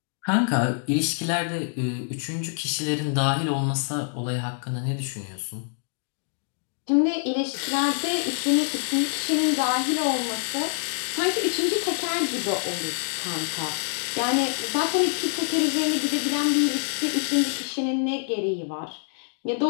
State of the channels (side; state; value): right; silent; digital silence